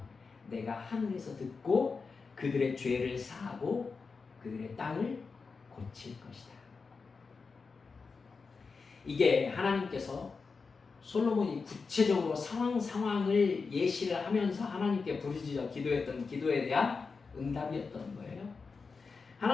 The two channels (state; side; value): quieter; right; 4.7 dB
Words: 내가 하늘에서 듣고 그들의 죄를 사하고 그들의 땅을 고칠 것이다. 이게 하나님께서 솔로몬이 구체적으로 상황을 예시를 하면서 하나님께 부르짖어 기도했던 기도에 대한 응답이었던 거예요.